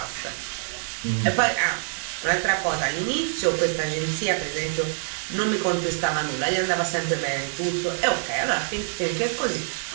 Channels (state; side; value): silent; left; digital silence